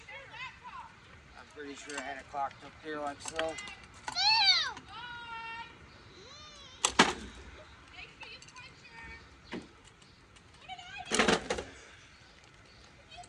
I'm pretty sure I had it clocked up there like so.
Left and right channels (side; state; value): both; identical; correlation 1.00